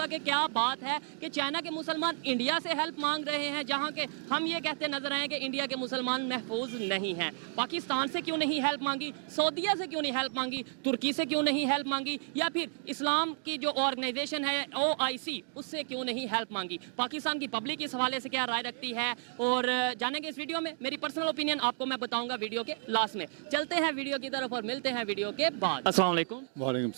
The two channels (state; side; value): silent; left; digital silence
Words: कि क्या बात है कि चाइना के मुसलमान इंडिया से हेल्प मांग रहे हैं, जहां के हम ये कहते नजर आए कि इंडिया के मुसलमान महफूज नहीं हैं। पाकिस्तान से क्यों नहीं हेल्प मांगी, सऊदीया से क्यों नहीं हेल्प मांगी, तुर्की से क्यों नहीं हेल्प मांगी, या फिर इस्लाम की जो ऑर्गेनाइजेशन है OIC उससे क्यों नहीं हेल्प मांगी? पाकिस्तान की पब्लिक इस हवाले से क्या राय रखती है और जानेंगे इस वीडियो में। मेरी पर्सनल ओपिनियन आपको मैं बताऊंगा वीडियो के लास्ट में। चलते हैं वीडियो की तरफ और मिलते हैं वीडियो के बाद। अस्सलाम वालेकुम